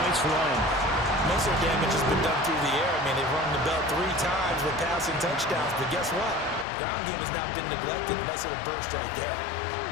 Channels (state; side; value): drops out; right; at 6.7 s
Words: run. Most of the damage has been done through the air. I mean, they've rung the bell 3 times with passing touchdowns, but guess what? Ground game has not been neglected unless it'll burst right there.